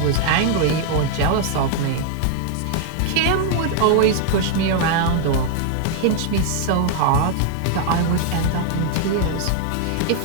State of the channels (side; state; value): both; different; correlation 0.00